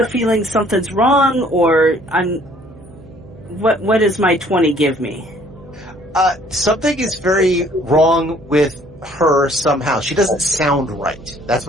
feeling something's wrong, or what does my 20 give me? Something is very wrong with her somehow. She doesn't sound right. That's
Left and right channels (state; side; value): noise; right; hum, 22 dB below the sound